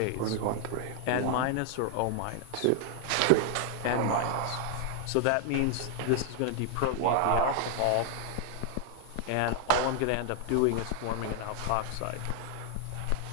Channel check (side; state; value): both; different; correlation 0.00